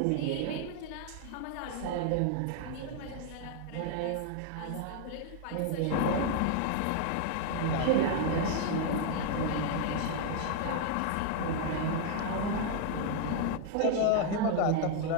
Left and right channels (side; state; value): both; different; correlation 0.00